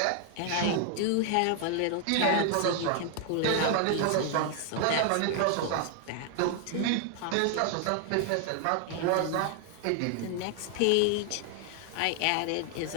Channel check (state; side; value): different; both; correlation 0.00